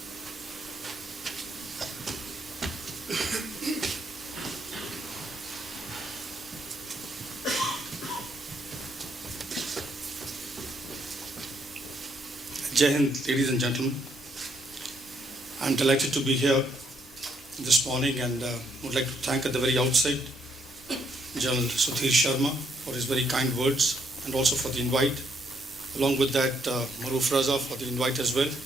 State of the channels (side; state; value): both; normal; correlation 0.73